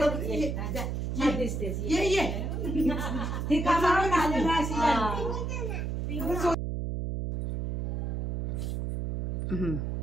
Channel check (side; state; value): right; noise; hum, 1 dB below the sound